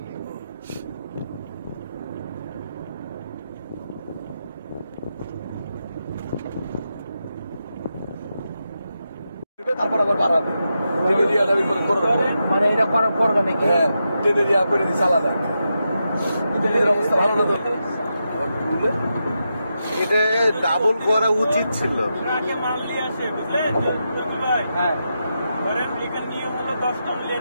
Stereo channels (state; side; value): inverted; both; correlation -0.86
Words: নিয়ে। তারপর আবার বাড়াবে, মানে এটা করার পর নাকি? হ্যাঁ, ট্রেনের ইয়া করে দিচ্ছে আলাদা। ট্রেনের অবস্থা ভালো না তো, এটা ডাবল করা উচিত ছিল। মাল নিয়ে আসে, বুঝলেন ভাই? হ্যাঁ, ধরেন এখানে নিয়ম হলো 10 টন